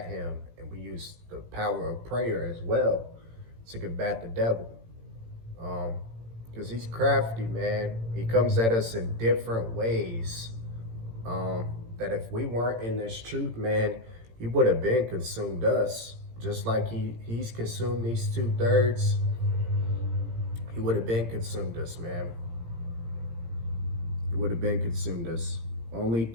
him, and we use the power of prayer as well to combat the devil, because he's crafty, man. He comes at us in different ways, that if we weren't in this truth, man, he would have been consumed us. Just like he's consumed these 2/3, he would have been consumed us, man. He would have been consumed us. Only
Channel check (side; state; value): left; late; 18 ms